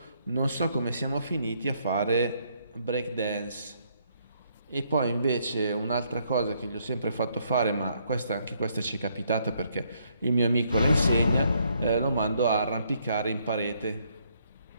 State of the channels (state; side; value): inverted; both; correlation -0.71